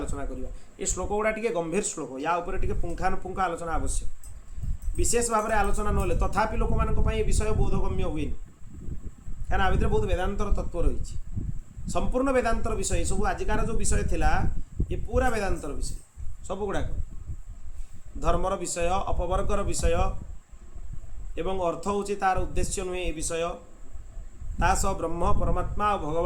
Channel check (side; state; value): both; identical; correlation 1.00